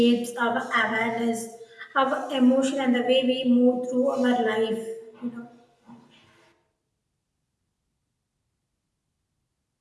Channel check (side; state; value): both; identical; correlation 1.00